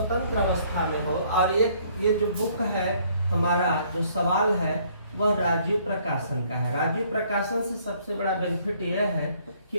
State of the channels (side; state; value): both; inverted; correlation -0.63